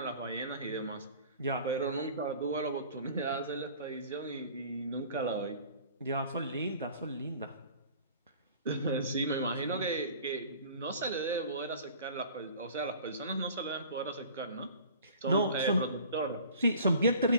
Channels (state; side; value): inverted; both; correlation -0.46